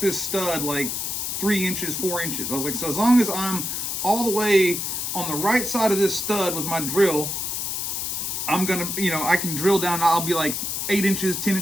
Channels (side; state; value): left; noise; hiss, 2 dB below the sound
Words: this stud, like, 3 inches, 4 inches. I was like, so as long as I'm all the way on the right side of this stud with my drill, I'm gonna, I can drill down, I'll be like 8 inches, 10